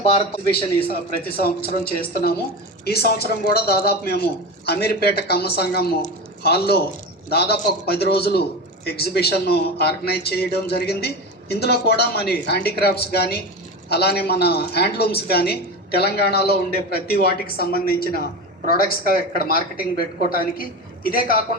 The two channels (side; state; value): both; normal; correlation 0.24